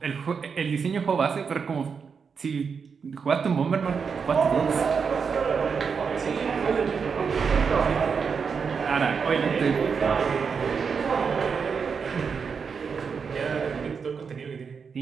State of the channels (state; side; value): quieter; left; 5.9 dB